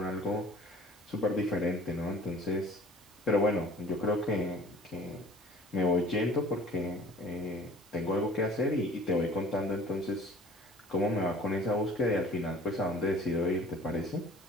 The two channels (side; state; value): right; noise; hiss, 26 dB below the sound